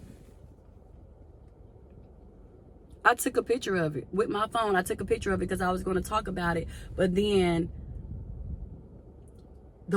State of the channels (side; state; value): both; identical; correlation 1.00